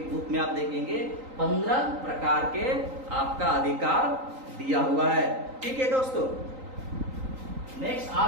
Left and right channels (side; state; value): left; late; 3.8 ms